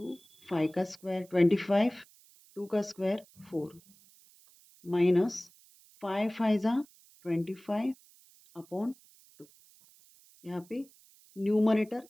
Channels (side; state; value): right; noise; hiss, 27 dB below the sound